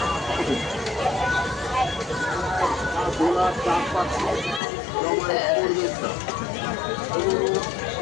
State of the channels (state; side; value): drops out; right; at 4.6 s